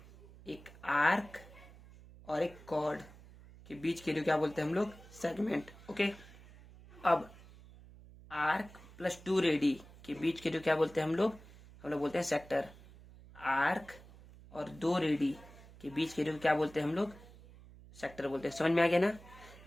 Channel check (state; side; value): noise; right; hum, 20 dB below the sound